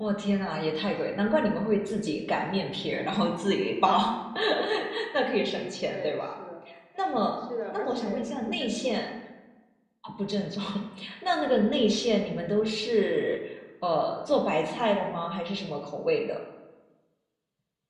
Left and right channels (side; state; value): both; identical; correlation 1.00